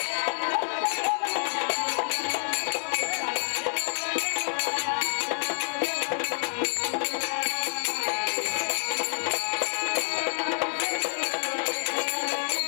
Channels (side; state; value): right; silent; digital silence